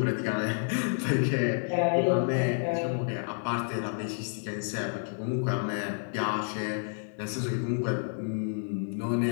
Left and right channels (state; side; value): silent; right; 58 dB below the other